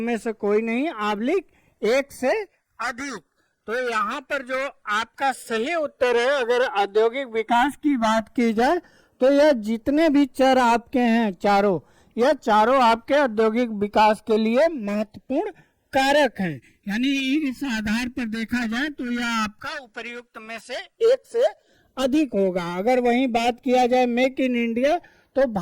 से कोई नहीं आबलिक एक से अधिक। तो यहाँ पर जो आपका सही उत्तर है, अगर औद्योगिक विकास की बात की जाए तो यह जितने भी चर आपके हैं चारों, यह चारों आपके औद्योगिक विकास के लिए महत्वपूर्ण कारक हैं। यानी इस आधार पर देखा जाए तो यह आपका उपर्युक्त में से एक से अधिक होगा। अगर वहीं बात किया जाए मेक इन इंडिया, तो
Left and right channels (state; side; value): identical; both; correlation 1.00